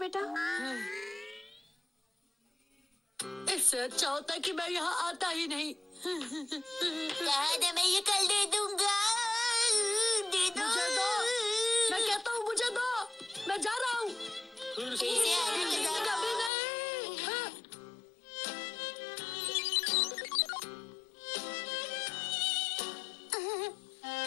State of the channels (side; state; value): right; drops out; at 16.5 s